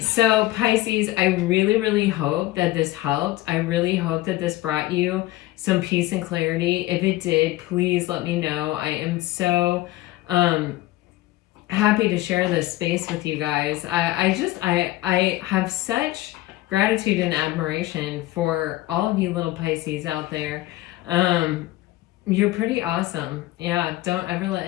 So Pisces, I really, really hope that this helped. I really hope that this brought you some peace and clarity. If it did, please let me know. I am so happy to share this space with you guys. I have such gratitude and admiration for all of you little Pisces out there. You're pretty awesome. Yeah, don't ever let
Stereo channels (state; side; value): quieter; right; 17.1 dB